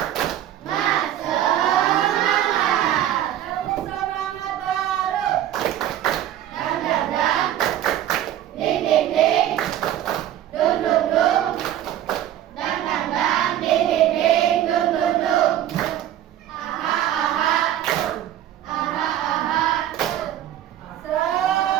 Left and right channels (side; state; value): left; quieter; 11.9 dB